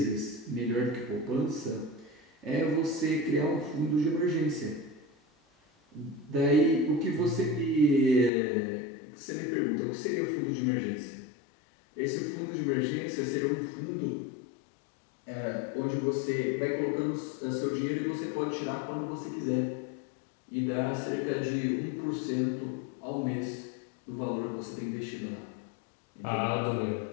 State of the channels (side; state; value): right; drops out; at 8.3 s